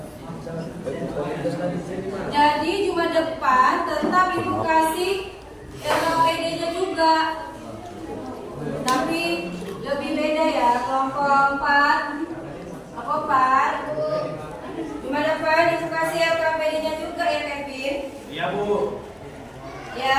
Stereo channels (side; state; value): both; identical; correlation 1.00